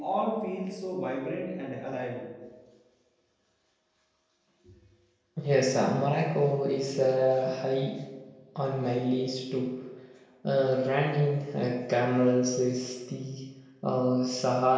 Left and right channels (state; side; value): identical; both; correlation 1.00